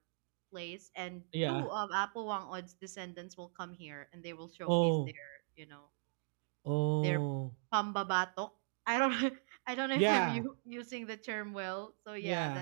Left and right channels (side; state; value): left; silent; digital silence